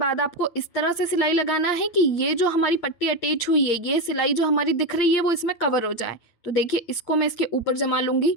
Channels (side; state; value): right; late; 8.7 ms